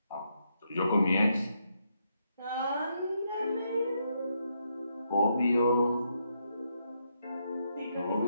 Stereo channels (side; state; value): both; inverted; correlation -0.79